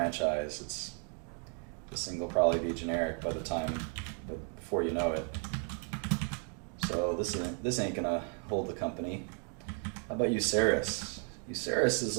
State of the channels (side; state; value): left; quieter; 36.9 dB